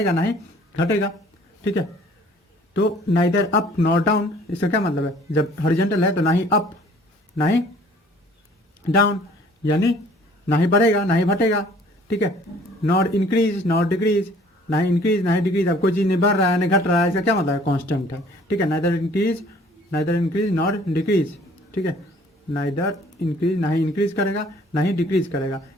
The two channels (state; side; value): normal; both; correlation 0.54